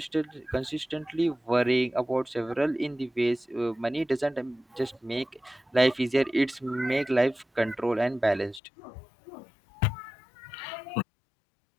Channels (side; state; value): right; drops out; at 8.6 s